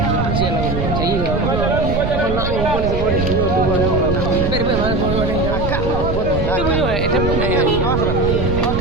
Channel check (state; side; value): noise; right; rumble, 5 dB below the sound